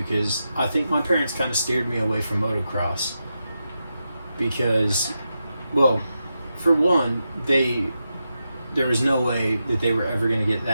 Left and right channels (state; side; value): inverted; both; correlation -0.87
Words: because I think my parents kind of steered me away from motocross. Because, well, for one, there was no way that they were ever going to get